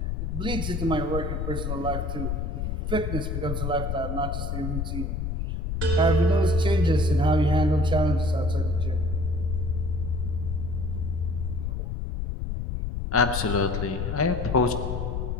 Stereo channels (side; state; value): left; noise; rumble, 2 dB below the sound